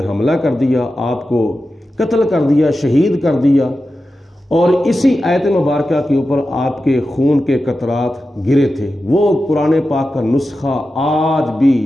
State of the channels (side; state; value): both; normal; correlation 0.92